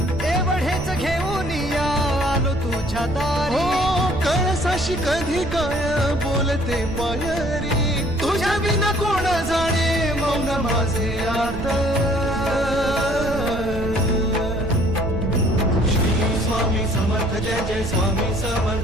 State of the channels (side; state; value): right; noise; rumble, 9 dB below the sound